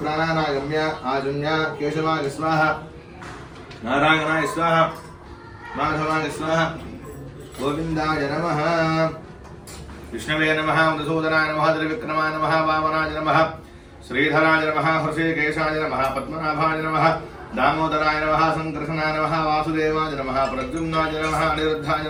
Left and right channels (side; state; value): both; identical; correlation 1.00